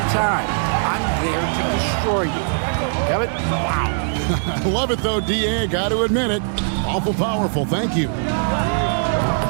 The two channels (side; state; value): left; silent; digital silence